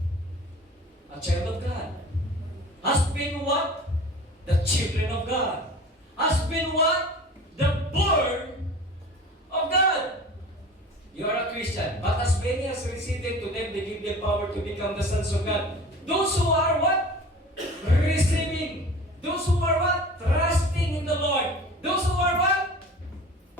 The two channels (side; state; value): both; normal; correlation 0.40